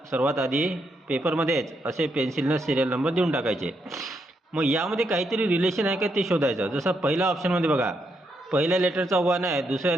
आधी पेपरमध्येच असे पेन्सिलनं सिरियल नंबर देऊन टाकायचे. मग यामध्ये काहीतरी रिलेशन आहे का ते शोधायचं. जसं पहिल्या ऑप्शनमध्ये बघा, पहिल्या लेटरचा 1 आहे, दुसऱ्या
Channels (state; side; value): normal; both; correlation 0.79